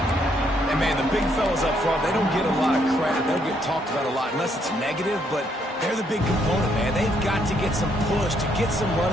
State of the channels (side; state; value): both; normal; correlation 0.72